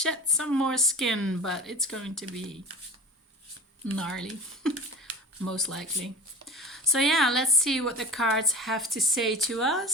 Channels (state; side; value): normal; both; correlation 0.34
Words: some more skin, but it's going to be gnarly, most likely. So yeah, let's see what the cards have to say to